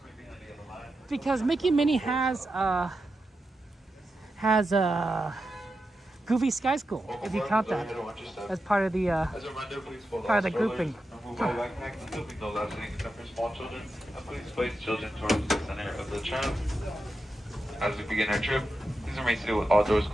Because Mickey and Minnie has Goofy Sky School, if you count that as part of the grouping. No left sitting except for small children, and please place children towards the center of the tram. As we begin our trip, please remain seated with all doors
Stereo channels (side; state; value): both; normal; correlation 0.89